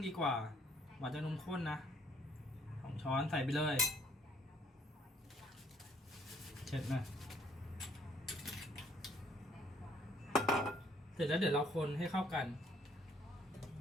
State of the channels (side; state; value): both; normal; correlation 0.63